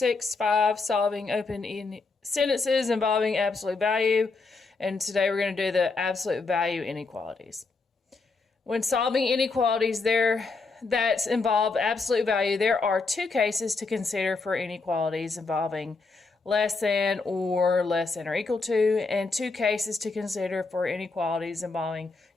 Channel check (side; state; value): right; quieter; 4.0 dB